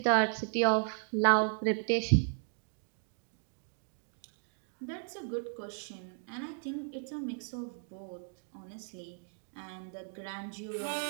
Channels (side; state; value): left; silent; 54 dB below the other